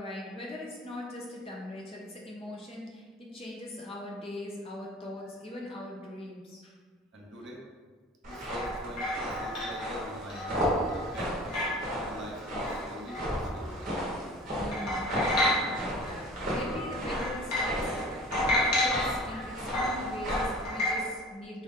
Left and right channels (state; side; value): normal; both; correlation 0.41